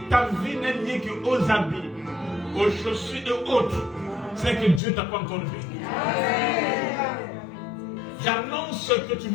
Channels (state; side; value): drops out; right; at 4.8 s